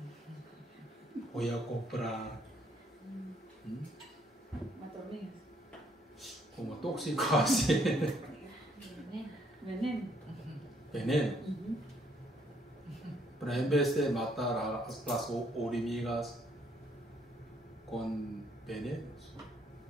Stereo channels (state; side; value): normal; both; correlation 0.68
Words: Voy a comprar Hormigas. como tóxico así. Veneno. Pero en vez de matar a las hormigas con venenos,